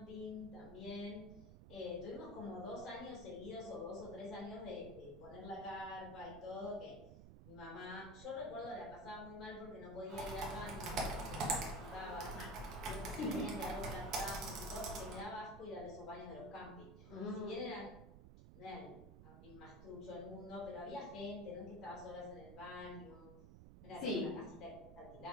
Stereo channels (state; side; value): noise; right; rumble, 13 dB below the sound